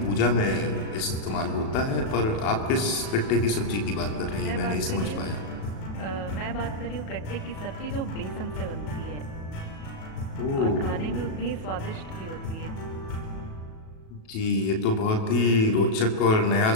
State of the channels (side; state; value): right; late; 37 ms